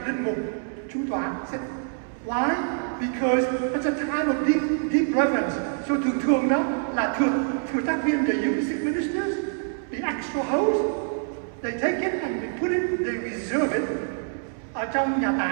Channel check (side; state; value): left; silent; 61 dB below the other